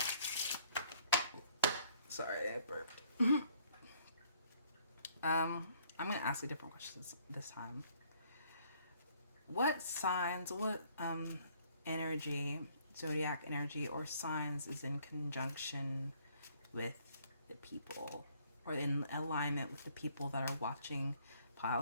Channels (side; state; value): both; inverted; correlation -0.63